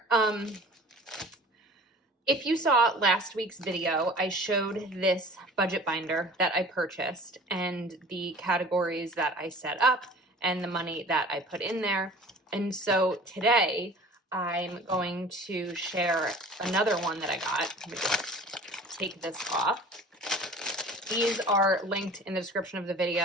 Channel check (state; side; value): normal; both; correlation 0.44